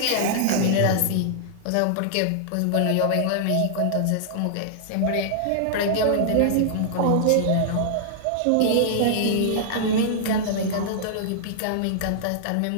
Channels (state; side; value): different; both; correlation -0.01